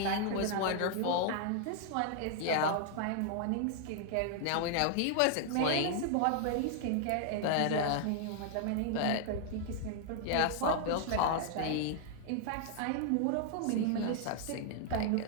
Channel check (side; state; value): both; different; correlation 0.00